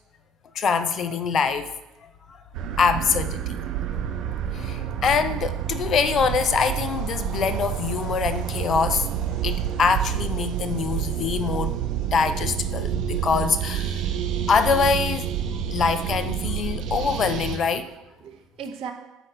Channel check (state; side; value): normal; both; correlation 0.54